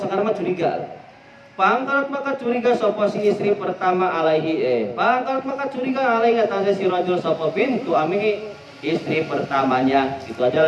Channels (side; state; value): both; identical; correlation 1.00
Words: mah curiga. Pangkarat maka curiga sapa si istri pertama alaihi pangkarat maka curiga alaihi atas si rajul sapa bintu ami istri pertamanya. Itu